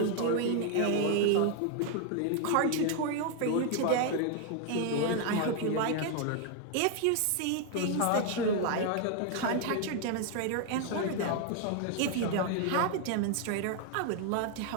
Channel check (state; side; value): different; both; correlation 0.00